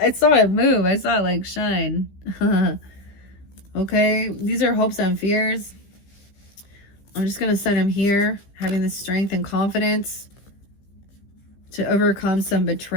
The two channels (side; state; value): right; late; 15 ms